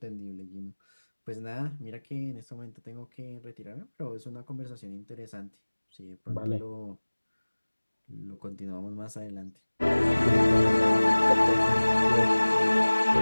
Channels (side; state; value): both; inverted; correlation -1.00